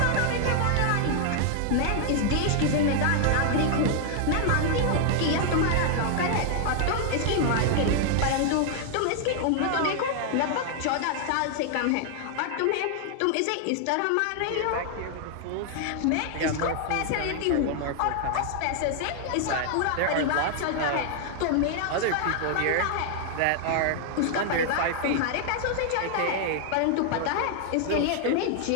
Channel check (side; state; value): both; different; correlation 0.00